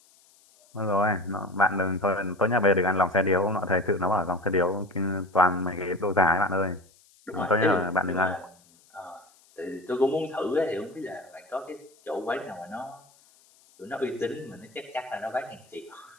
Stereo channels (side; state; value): left; noise; hiss, 30 dB below the sound